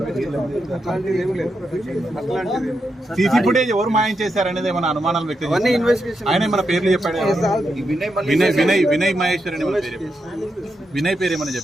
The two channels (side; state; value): both; normal; correlation 0.85